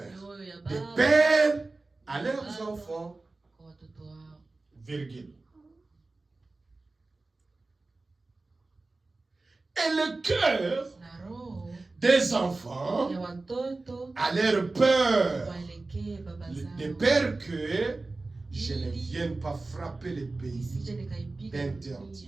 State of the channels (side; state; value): left; quieter; 3.3 dB